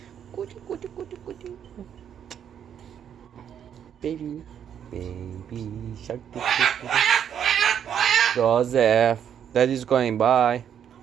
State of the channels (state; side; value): quieter; left; 8.9 dB